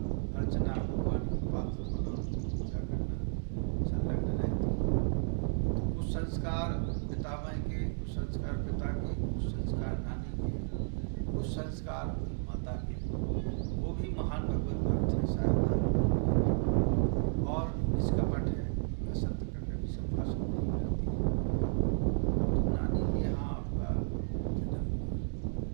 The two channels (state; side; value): silent; left; digital silence